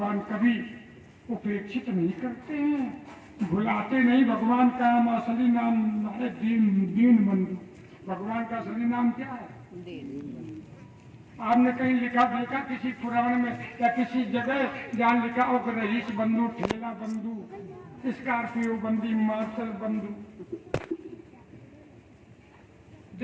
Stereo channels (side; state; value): both; identical; correlation 1.00